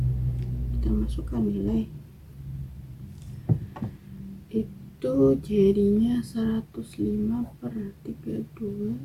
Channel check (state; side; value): identical; both; correlation 1.00